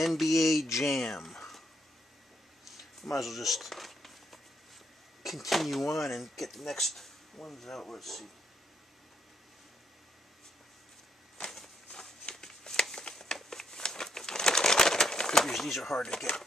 Jam. Might as well just continue on and get the next ones out. Let's see. Figures these are hard to get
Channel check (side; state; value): both; normal; correlation 0.75